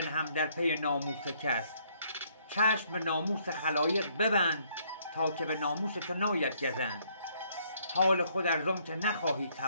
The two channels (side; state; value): both; inverted; correlation -0.67